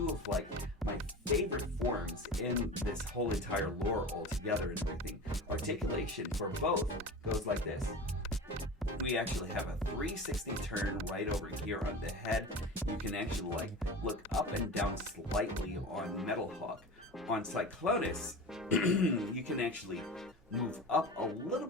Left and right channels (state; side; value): normal; both; correlation 0.32